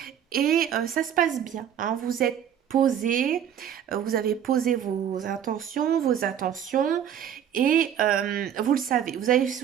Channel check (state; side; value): quieter; left; 9.4 dB